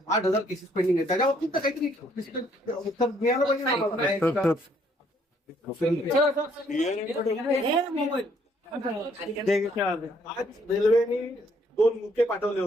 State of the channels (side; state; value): both; normal; correlation 0.66